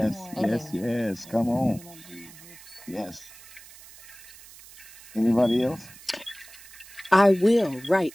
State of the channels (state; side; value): noise; right; hiss, 19 dB below the sound